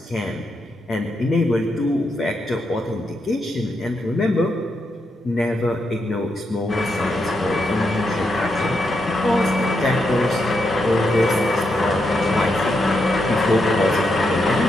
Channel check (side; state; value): both; normal; correlation 0.82